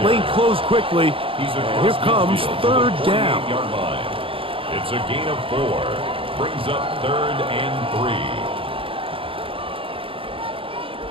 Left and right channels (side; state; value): left; late; 0.26 ms